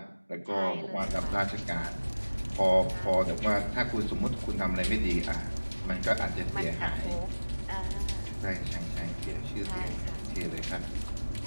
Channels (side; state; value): both; inverted; correlation -1.00